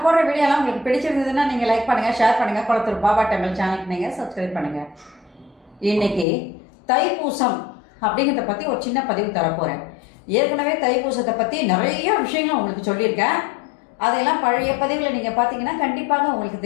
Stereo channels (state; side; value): drops out; right; at 6.2 s